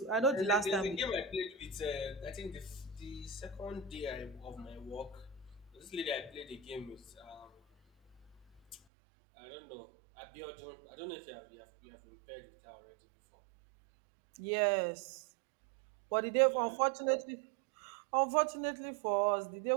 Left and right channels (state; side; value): drops out; left; at 8.8 s